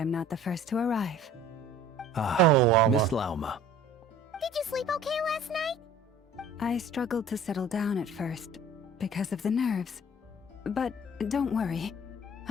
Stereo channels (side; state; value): both; normal; correlation 0.48